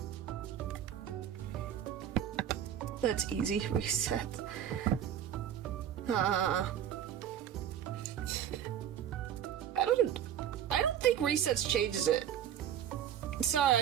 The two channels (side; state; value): left; quieter; 9.9 dB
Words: That's easy. Reset. I don't think resets changes it. Sorry,